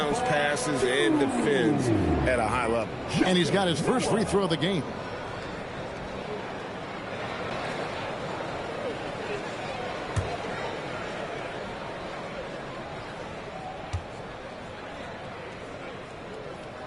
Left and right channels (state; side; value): identical; both; correlation 1.00